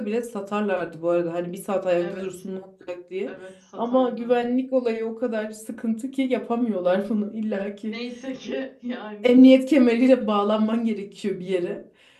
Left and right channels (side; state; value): both; identical; correlation 1.00